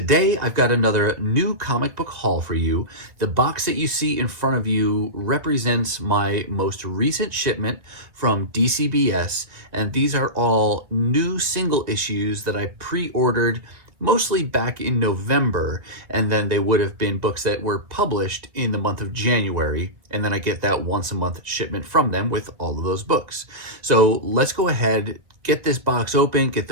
I've got another new comic book haul for you. The box that you see in front of you represents my most recent shipment from DCBS, and these are all new single issues that I pre-ordered mostly back in November, and then they would have been books that were published in the month of January, and then I get that once a month shipment from them with all of those books. So let's go ahead, get this box open, get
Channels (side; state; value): left; late; 1.8 ms